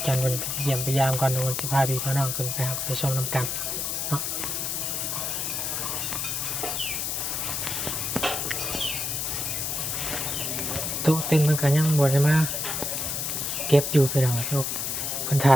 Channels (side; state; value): left; noise; hiss, 1 dB below the sound